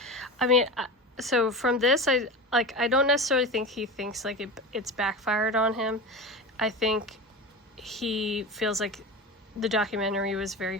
mean, so from this, I don't necessarily think he thinks, like, it's backfired on him. I think he feels like the documentary was very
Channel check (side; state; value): both; normal; correlation 0.27